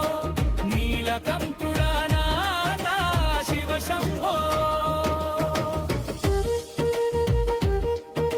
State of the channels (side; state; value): both; identical; correlation 1.00